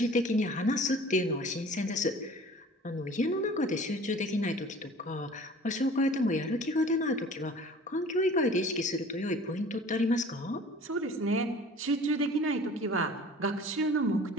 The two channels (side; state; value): both; normal; correlation 0.45